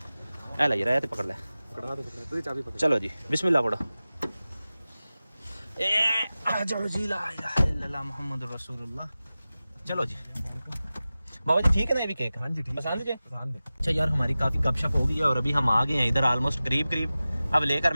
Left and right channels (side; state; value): both; inverted; correlation -0.96